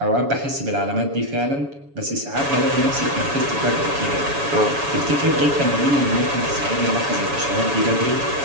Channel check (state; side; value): late; left; 7.1 ms